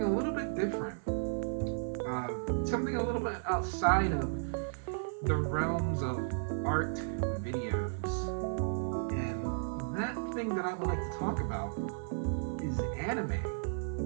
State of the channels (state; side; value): silent; left; digital silence